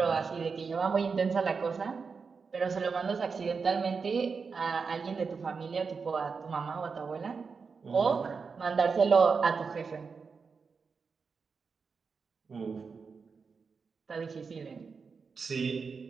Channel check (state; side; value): quieter; left; 5.2 dB